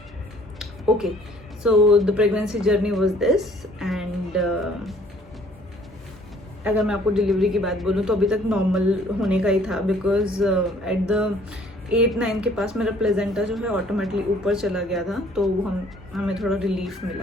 Okay, so the pregnancy journey was this. And अगर मैं आपको डिलीवरी की बात बोलूँ तो अभी तक नॉर्मल होने का ही था, बिकॉज एट द 8-9 के पास मेरा प्लेजेंटा जो है ऑटोमेटिकली ऊपर चला गया था. तो हमें थोड़ा रिलीफ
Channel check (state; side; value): normal; both; correlation 0.58